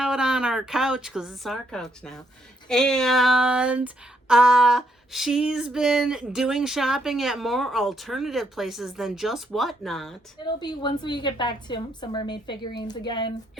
on our couch because it's our couch now. And she's been doing shopping at more alternative places than just Whatnot. It'll be once we get back to some mermaid figurines again.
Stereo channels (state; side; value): normal; both; correlation 0.74